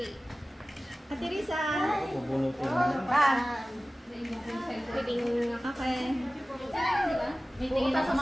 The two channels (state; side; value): normal; both; correlation 0.97